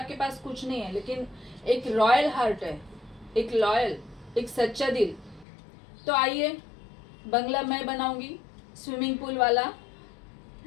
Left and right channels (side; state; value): right; drops out; at 5.5 s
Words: पास कुछ नहीं है लेकिन एक रॉयल हार्ट है, एक लॉयल, एक सच्चा दिल, तो आइए, बंगला मैं बनाऊंगी, स्विमिंग पूल वाला।